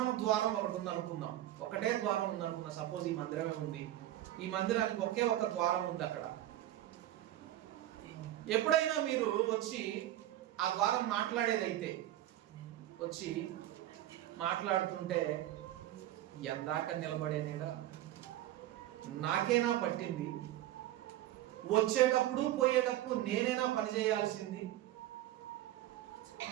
ద్వారం ఒకటి ఉంది అనుకుందాం. ఒకటే ద్వారం ఉంది అనుకుందాం. సపోజ్ ఈ మందిరమే ఉంది. ఈ మందిరానికి ఒకే ఒక ద్వారం ఉంది. అక్కడ ఎప్పుడైనా మీరు వచ్చి ఆ ద్వారం మాట్లాడేదైతే వచ్చి మాట్లాడుతుంటే ఎందాక నిలబడేనేడా, నాకేనా పట్టింది, వచ్చేటప్పుడు పోయేటప్పుడు నేనేనా పని చేయాల్సింది,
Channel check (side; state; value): left; quieter; 13.8 dB